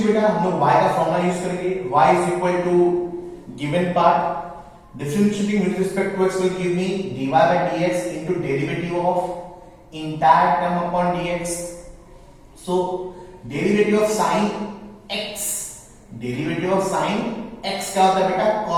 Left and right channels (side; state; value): both; identical; correlation 1.00